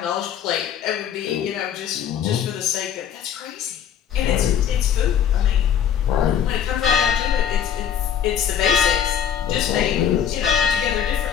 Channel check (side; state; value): right; quieter; 8.7 dB